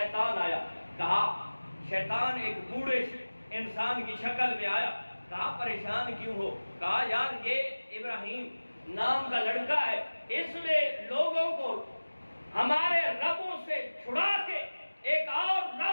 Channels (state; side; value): inverted; both; correlation -1.00